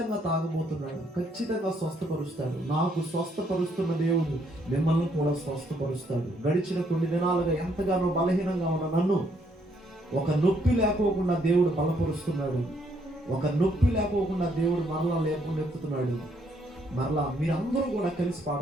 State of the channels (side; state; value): both; normal; correlation 0.70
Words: తాగబోతున్నాడు, ఖచ్చితంగా స్వస్థపరుస్తాడు. నాకు స్వస్థపరుస్తున్న దేవుడు మిమ్మల్ని కూడా స్వస్థపరుస్తాడు. గడిచిన కొన్ని దినాలుగా ఎంతగానో బలహీనంగా ఉన్న నన్ను ఒక నొప్పి లేకోకుండా దేవుడు బలపరుస్తున్నాడు. ఒక నొప్పి లేకోకుండా దేవుడు మరలా లేపుతున్నాడు. మరలా మీరందరూ కూడా కలిసి